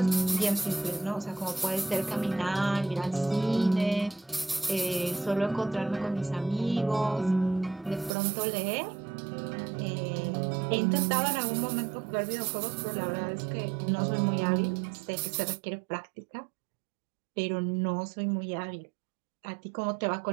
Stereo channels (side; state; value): left; drops out; at 8.1 s